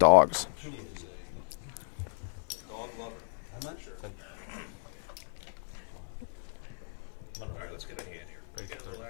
She is a dog lover, that's for sure. All right, let's get a hand here. Can we get a little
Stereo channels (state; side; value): silent; right; digital silence